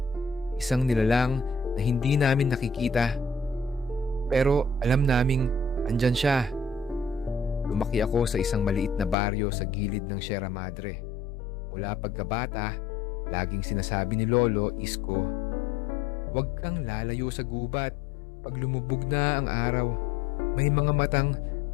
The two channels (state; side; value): drops out; right; at 9.2 s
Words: Isang nilalang na hindi namin nakikita. Pero alam naming andyan siya. Lumaki ako sa isang maliit na baryo sa gilid ng Sierra Madre. Mula pagkabata, laging sinasabi ni Lolo Isko, "Huwag kang lalayo sa gubat. Pag lumubog na ang araw, may mga matang